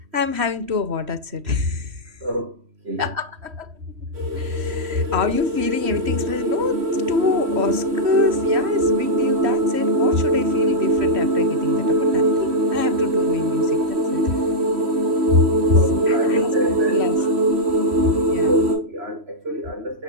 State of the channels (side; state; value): left; late; 3.1 ms